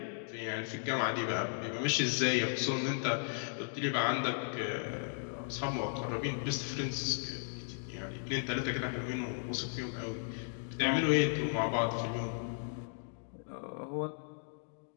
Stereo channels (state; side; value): silent; right; digital silence